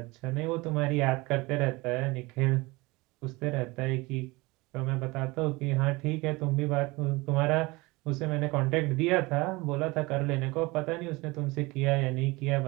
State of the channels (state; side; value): quieter; left; 23.2 dB